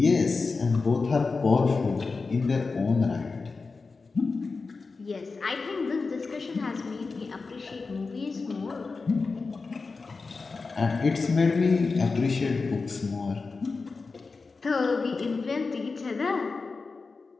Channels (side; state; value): right; quieter; 4.2 dB